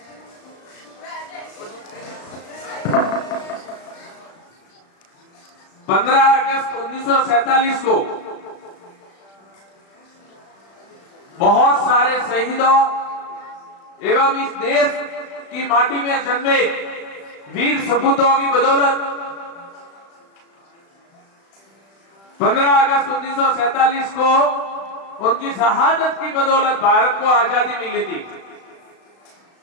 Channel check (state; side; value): late; right; 36 ms